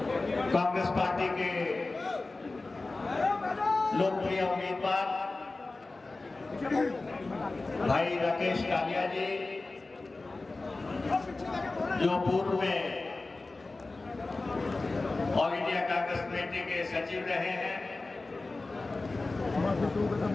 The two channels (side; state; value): right; quieter; 3.4 dB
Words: कांग्रेस पार्टी के लोकप्रिय उम्मीदवार भाई राकेश कालिया जी, जो पूर्व में ऑल इंडिया कांग्रेस कमेटी के सचिव रहे हैं